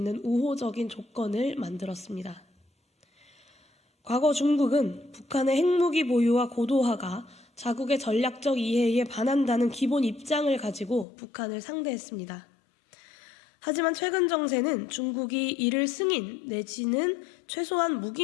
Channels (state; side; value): drops out; right; at 11.1 s